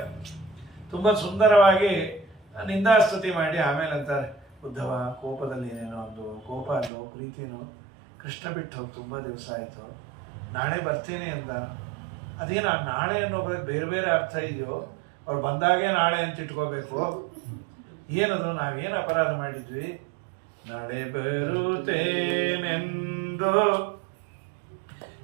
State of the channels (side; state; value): left; drops out; at 6.9 s